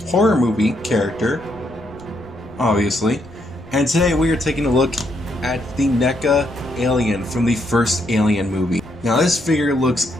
horror movie character, obviously, and today we are taking a look at the Neca alien from the first Alien movie. Now this figure looks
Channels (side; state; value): left; noise; rumble, 23 dB below the sound